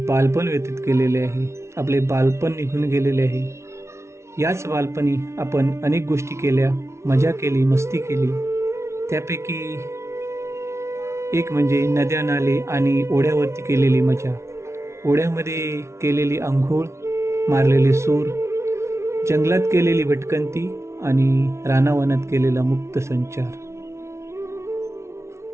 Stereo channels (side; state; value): left; late; 0.13 ms